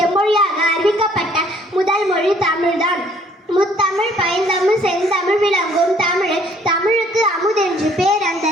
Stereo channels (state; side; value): normal; both; correlation 0.61